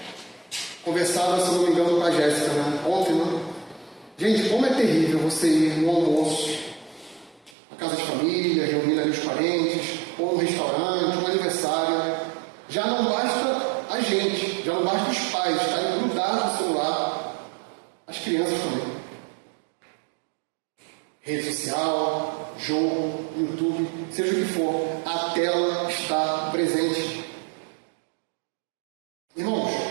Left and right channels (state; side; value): drops out; left; at 7.6 s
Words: conversava, se não me engano, com a Jéssica, né? Ontem, né? Gente, como é terrível você ir no almoço, na casa de família, reunindo ali os parentes, ou no restaurante, um aniversário. Já não basta a gente, já não basta os pais estarem grudados no celular, as crianças também. Rede social, jogo, YouTube, seja o que for, a tela está presente. Irmãos,